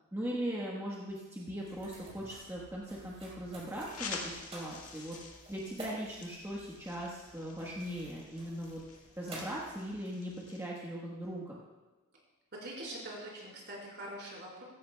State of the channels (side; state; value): both; normal; correlation 0.59